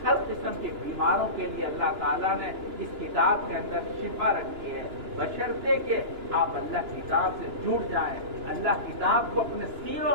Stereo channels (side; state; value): left; late; 2.9 ms